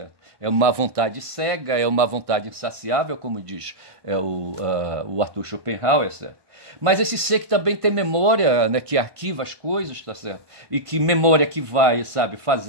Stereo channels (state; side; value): late; left; 1.5 ms